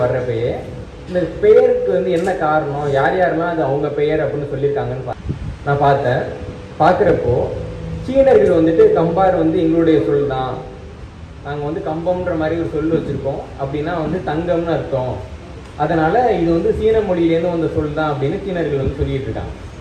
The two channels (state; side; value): identical; both; correlation 1.00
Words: வர்றப்பயே இந்த பெயருக்கு வந்து என்ன காரணம், யார் யாரெல்லாம் அது அவங்க பெயர் அப்படின்னு சொல்லியிருக்காங்கன்னு நான் பார்த்தேன். பார்க்குறப்போ சீனர்கள் வந்துட்டு கம்பார் வந்து எங்களுடைய சொல் தான், நாங்கள் வந்து கம்பம்ன்ற மாதிரி ஒரு சொல் வச்சுருக்கோம், அப்படின்னா வந்து தங்கம்னு அர்த்தம், அதனால் இது வந்து சீன மொழியிலேருந்து வந்த சொல் தான் அப்படின்னு சீனர்கள் வந்து சொல்லிகிட்டு இருக்காங்க.